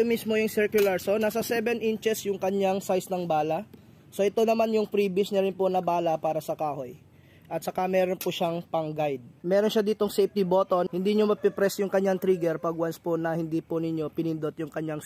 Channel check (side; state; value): both; identical; correlation 1.00